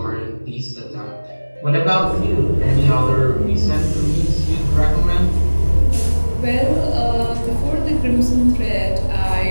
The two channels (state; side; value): inverted; both; correlation -1.00